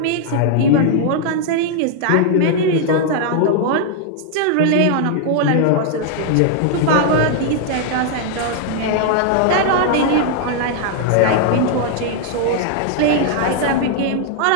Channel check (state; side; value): different; both; correlation 0.00